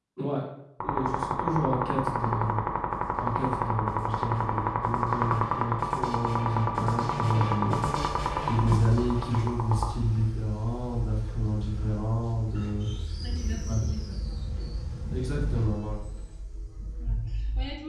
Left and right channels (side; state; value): both; identical; correlation 1.00